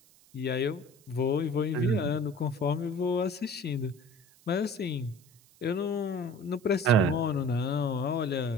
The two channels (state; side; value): noise; right; hiss, 28 dB below the sound